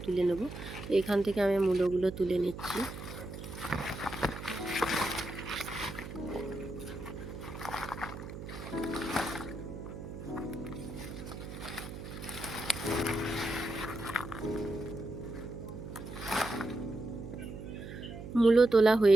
তুলে নেব। তো এখান থেকে আমি মূলোগুলো তুলে নিচ্ছি। মূলো তোলা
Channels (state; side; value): noise; right; hum, 10 dB below the sound